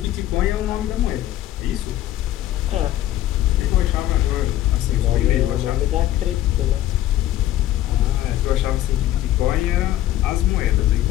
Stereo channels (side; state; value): right; quieter; 13.3 dB